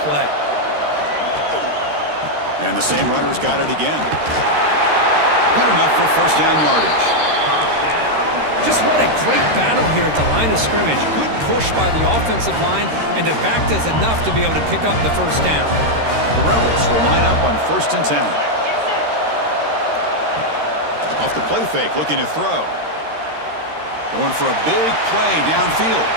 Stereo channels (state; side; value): late; left; 13 ms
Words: And the same runner's got it again. Good enough for first down yardage. Just what a great battle here at the line of scrimmage. Good push by the offensive line, and the back does enough to be able to pick up the first down. The Rebels will line up on 1st and 10. Off the play fake, looking to throw. Going for a big play downfield.